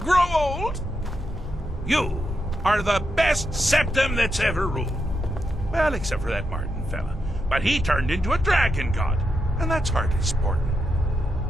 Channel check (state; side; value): normal; both; correlation 0.84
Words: old? You are the best septum that's ever ruled. Well, except for that Martin fella. But he turned into a dragon god, and that's hardly sporting.